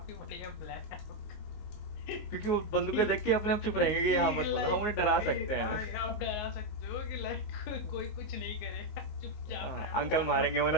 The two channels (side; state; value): right; late; 19 ms